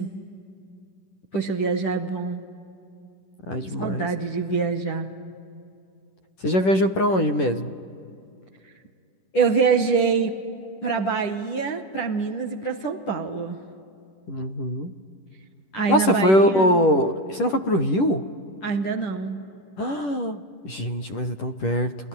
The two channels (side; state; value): right; late; 10 ms